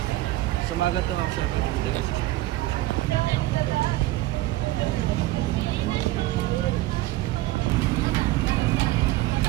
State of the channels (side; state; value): left; quieter; 17.1 dB